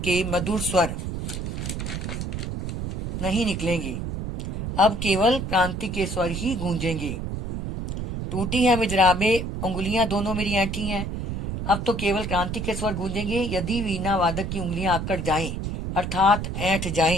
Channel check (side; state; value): right; noise; rumble, 4 dB below the sound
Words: मधुर स्वर नहीं निकलेंगे, अब केवल क्रांति के स्वर ही गूंजेंगे। टूटी है मिजराबे, उंगलियां दोनों मेरी ऐंठी हैं। अब तो केवल क्रांति के स्वर गूंजेंगे। यदि वीणा वादक की उंगलियां आकड़ जाएं, अर्थात ऐंठ